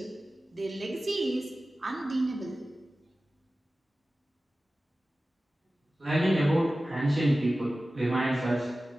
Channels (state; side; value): normal; both; correlation 0.96